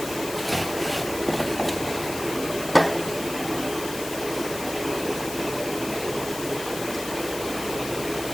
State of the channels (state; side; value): noise; left; hiss, 9 dB below the sound